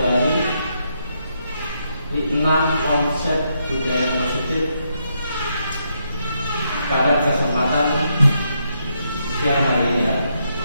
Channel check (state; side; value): inverted; both; correlation -0.79